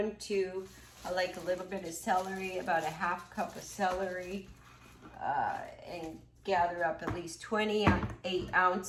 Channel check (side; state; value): both; identical; correlation 1.00